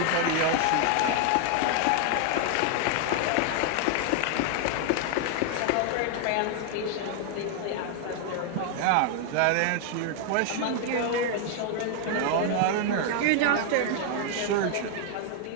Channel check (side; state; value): both; different; correlation 0.00